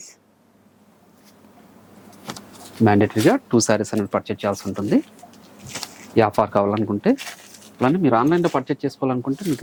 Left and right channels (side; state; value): both; identical; correlation 1.00